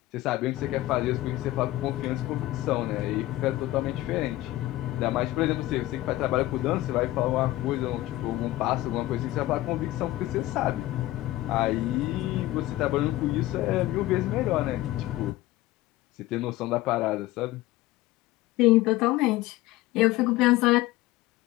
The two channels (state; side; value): quieter; right; 16.9 dB